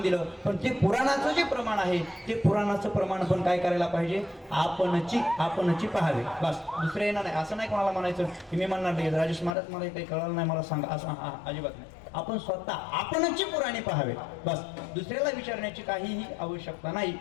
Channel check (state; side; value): drops out; right; at 9.6 s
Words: दिलं. पण ते पुराणाचं जे प्रमाण आहे ते पुराणाचं प्रमाण पण काय करायला पाहिजे आपणची पहावे. बस दुसरे येणार नाही. असं नाही कोणाला म्हणायचं की मी म्हणणार नाही राजेश महाराज मला काही कळलं नाही मला सांगा असं अजिबात नाही. आपण स्वतः आपणची पुराणे पहावे. बस दुसऱ्याला विचारण्याची काहीही आवश्यकता नाही.